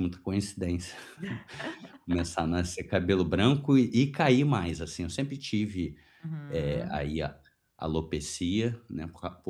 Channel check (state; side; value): identical; both; correlation 1.00